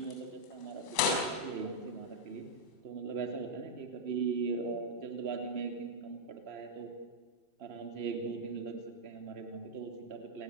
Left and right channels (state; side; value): late; left; 2.6 ms